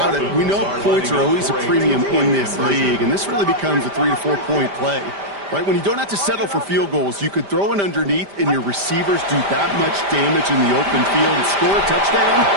it. We know points are always a premium in this league, and this really becomes a 3 to 4 point play. Right, when you don't have to settle for field goals, you could throw it underneath and your receivers do that much damage in the open field and score a touchdown.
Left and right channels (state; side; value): late; left; 5.1 ms